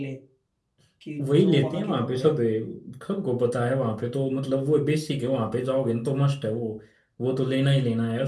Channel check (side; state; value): both; identical; correlation 1.00